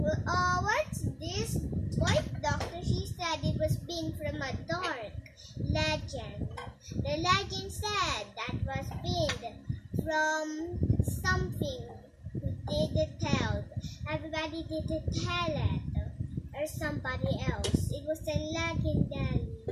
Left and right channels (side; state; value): both; identical; correlation 1.00